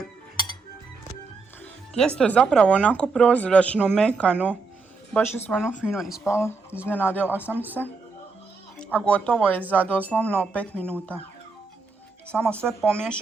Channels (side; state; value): left; quieter; 4.3 dB